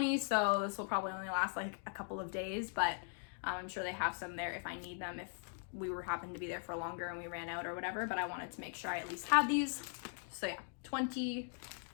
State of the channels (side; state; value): right; silent; 51 dB below the other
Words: so this will probably only last like a couple of days, but I'm sure they have some there if I need them, if we happened to be there for longer and we ran out or whatever, but I wanted to make sure I at least had these. So yeah, 20